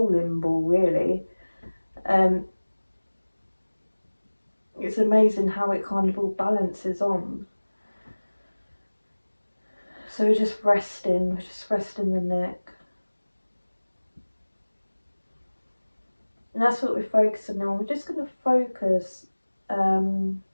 ball really. It's amazing how it kind of all balances on. So we're just resting the neck. And that's what we're focusing on. We're just going to focus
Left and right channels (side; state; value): both; inverted; correlation -1.00